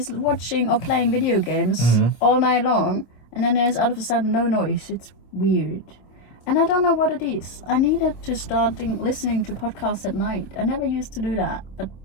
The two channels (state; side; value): late; right; 25 ms